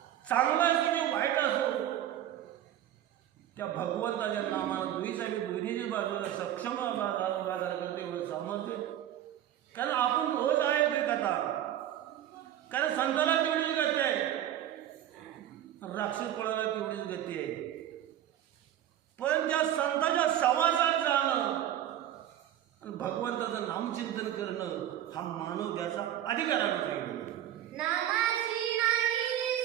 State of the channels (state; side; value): quieter; left; 11.7 dB